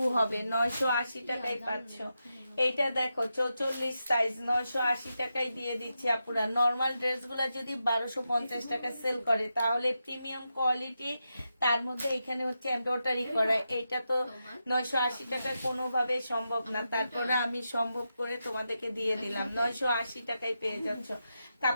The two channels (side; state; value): both; inverted; correlation -0.87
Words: হবে, 980 টাকায় পাচ্ছ। এইটা দেখো 44 সাইজ 980 টাকায় দিয়ে দিচ্ছি আপুরা। নর্মাল ড্রেসগুলো যদি 1250 টাকা সেল করে তাহলে প্রিমিয়াম কোয়ালিটি, তার মধ্যে এখানে হচ্ছে এমব্রয়ডারি করা, এটা তো 980 টাকায় কোনোভাবে সম্ভব না। তারপরে আমি সম্ভব করে তোমাদেরকে দিয়ে দিলাম, 980 টাকায় পেয়ে যাচ্ছ।